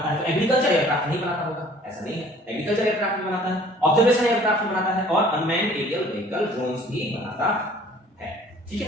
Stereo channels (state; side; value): normal; both; correlation 0.52